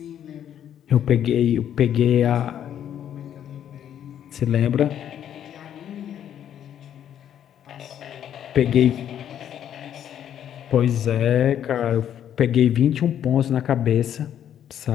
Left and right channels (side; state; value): right; quieter; 10.0 dB